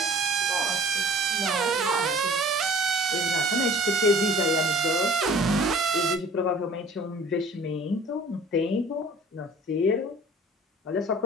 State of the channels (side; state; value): both; normal; correlation 0.48